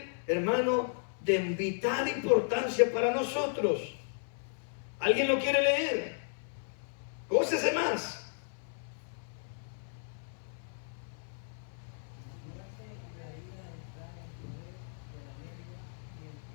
hermano, de vital importancia para nosotros. ¿Alguien lo quiere leer? Gócese más.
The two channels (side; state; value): right; silent; 55 dB below the other